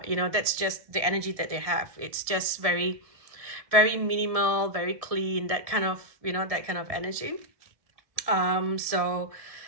that's just the energy that they have. It's just very minimal, very clean, that kind of energy. So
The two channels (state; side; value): late; left; 1.7 ms